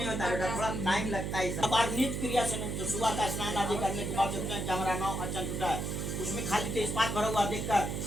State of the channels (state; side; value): noise; right; hum, 3 dB below the sound